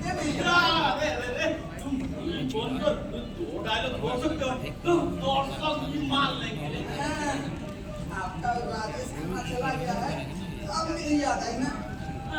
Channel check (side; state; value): both; identical; correlation 1.00